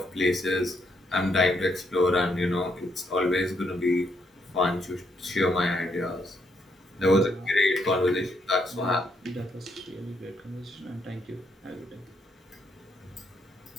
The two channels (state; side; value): normal; both; correlation 0.76